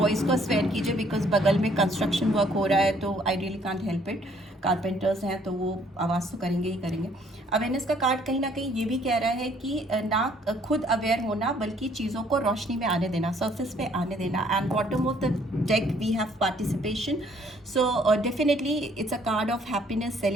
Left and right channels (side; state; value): both; normal; correlation 0.63